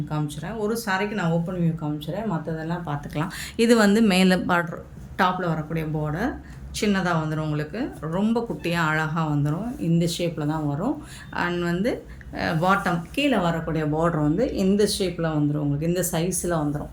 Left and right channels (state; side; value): identical; both; correlation 1.00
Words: காமிச்சிடுறேன். ஒரு சாரிக்கு நான் ஓப்பன் வியூ காமிச்சிடுறேன், மற்றதெல்லாம் பார்த்துக்கலாம். இது வந்து மேலே பார்டர் டாப்பில் வரக்கூடிய பார்டர் சின்னதாக வந்துடும், உங்களுக்கு ரொம்ப குட்டியாக அழகாக வந்துடும். இந்த ஷேப்பில் தான் வரும். அண்ட் வந்து பாட்டம் கீழே வரக்கூடிய பார்டர் வந்து இந்த ஷேப்பில் வந்துடும், உங்களுக்கு இந்த சைஸில் வந்துடும்.